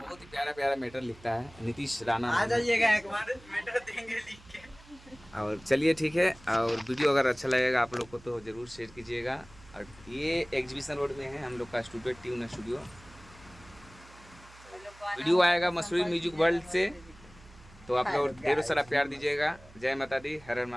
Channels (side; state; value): right; noise; hum, 23 dB below the sound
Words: ही प्यारा मैटर लिखता है, नीतीश राणा। आ जाइएगा एक बार, मैटर देंगे लिख के। और चलिए ठीक है, और वीडियो अगर अच्छा लगेगा आप लोग को तो ज़रूर शेयर कीजिएगा। और ये एग्जीबिशन रोड में है हम लोग का स्टूडियो, ट्यून स्टूडियो। वीडियो आएगा मसूरी म्यूजिक वर्ल्ड से, तो आप लोग ढेरों सारा प्यार दीजिएगा। जय माता दी, हर हर